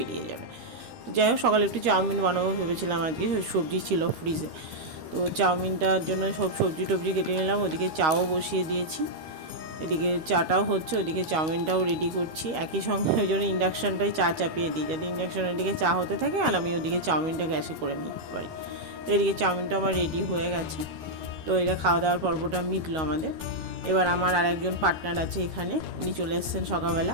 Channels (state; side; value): late; left; 13 ms